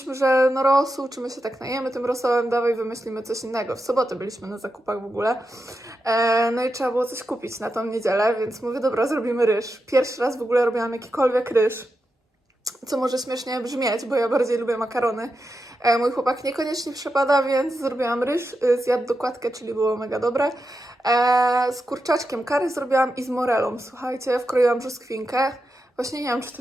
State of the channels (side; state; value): both; normal; correlation 0.88